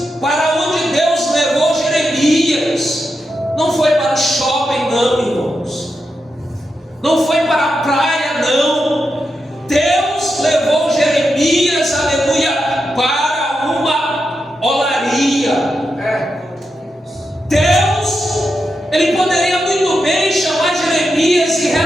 para onde Deus levou Jeremias. Não foi para o shopping, não, irmãos. Não foi para a praia, não. Deus levou Jeremias, aleluia, para uma olaria. Deus, ele poderia muito bem chamar Jeremias e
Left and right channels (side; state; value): both; normal; correlation 0.87